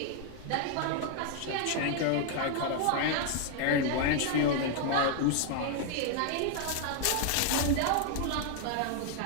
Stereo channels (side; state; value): both; different; correlation 0.00